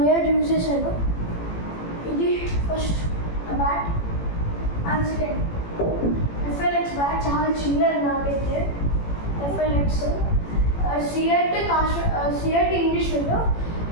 year యూజ్ చేశాను. ఇది first bat and second FLX bat, చాలా చిన్నది నాకైతే. ఎఫ్ఎల్ఎక్స్ సిఎట్ ఇంగ్లీష్ విండో,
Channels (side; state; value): right; late; 18 ms